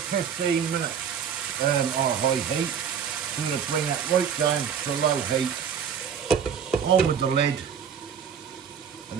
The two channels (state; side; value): quieter; left; 7.6 dB